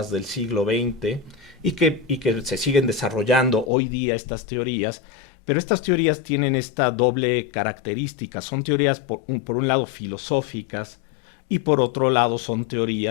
del siglo XX, y que se siguen desarrollando hoy día estas teorías, pero estas teorías tienen esta doble característica. Son teorías, por un lado, filosóficas, y por otro lado son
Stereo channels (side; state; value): right; drops out; at 3.7 s